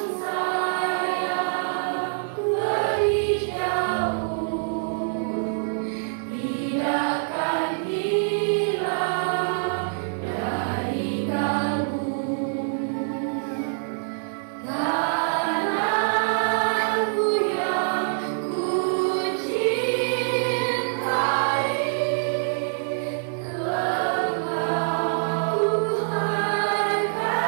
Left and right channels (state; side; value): silent; left; digital silence